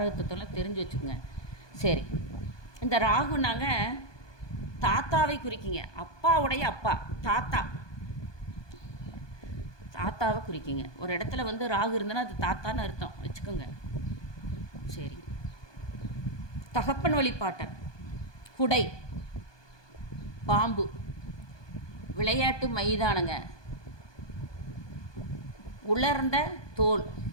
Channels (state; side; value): late; right; 1.2 ms